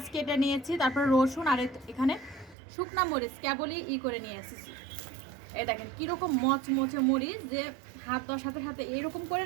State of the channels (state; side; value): drops out; left; at 2.6 s